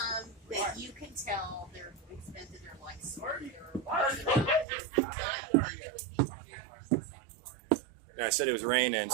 that you can tell they're expended their life. Yeah, I said it was raining,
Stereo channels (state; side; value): drops out; left; at 4.7 s